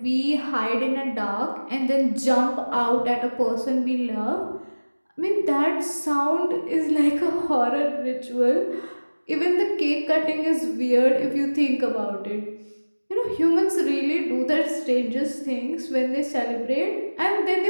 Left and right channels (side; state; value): both; inverted; correlation -1.00